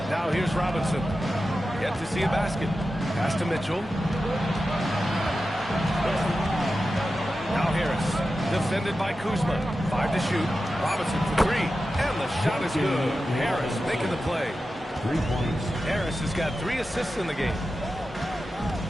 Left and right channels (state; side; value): normal; both; correlation 0.92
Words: Now here's Robinson. Yet to see a basket. Pass to Mitchell. Now Harris. Defended by Kuzma. 5 to shoot. Robinson for 3. And the shot is good. Harris making the play. 3 points. Harris has got 3 assists in the game.